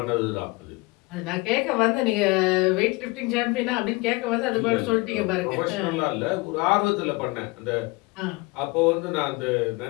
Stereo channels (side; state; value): right; quieter; 24.4 dB